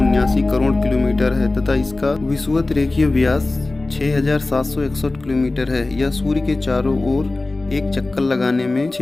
करोड़ किलोमीटर है तथा इसका विषुवत रेखीय व्यास 6761 किलोमीटर है। यह सूर्य के चारों ओर एक चक्कर लगाने में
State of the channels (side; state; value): right; quieter; 3.1 dB